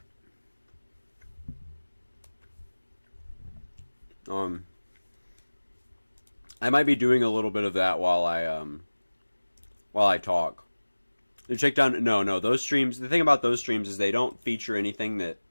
I might be doing a little bit of that while I talk. And check down. No, those streams. The thing about those streams is they don't feature anything that.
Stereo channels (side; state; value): both; inverted; correlation -1.00